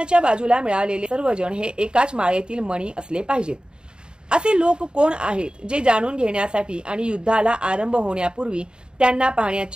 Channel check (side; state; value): left; late; 0.049 ms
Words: बाजूला मिळालेले सर्वजण हे एकाच माळेतील मणी असले पाहिजेत. असे लोक कोण आहेत जे जाणून घेण्यासाठी आणि युद्धाला आरंभ होण्यापूर्वी त्यांना